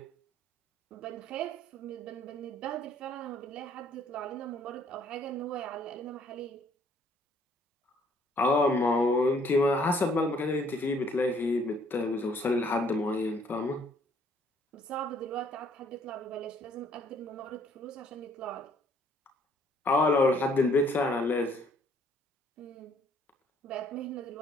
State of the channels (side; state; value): both; normal; correlation 0.63